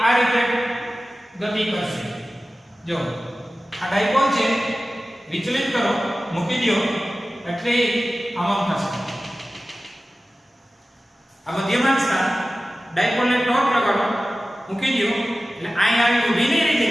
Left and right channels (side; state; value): both; normal; correlation 0.96